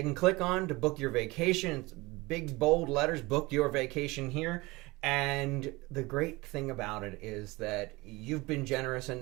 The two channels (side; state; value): left; quieter; 22.6 dB